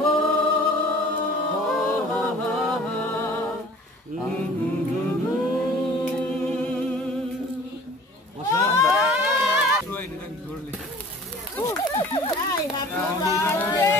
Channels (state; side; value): normal; both; correlation 0.47